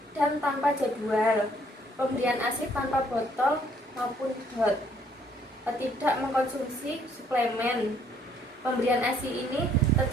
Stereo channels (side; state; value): both; normal; correlation 0.64